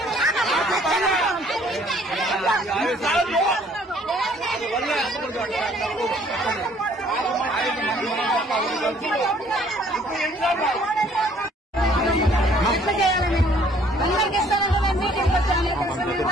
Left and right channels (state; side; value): normal; both; correlation 0.60